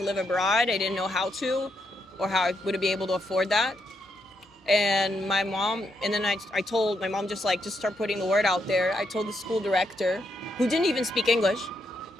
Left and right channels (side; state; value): both; normal; correlation 0.79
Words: live abroad. I didn't know how to or how I would be able to afford that. And my mom, and then I told my mom, just start putting the word out there. I told the school director, who didn't even speak English.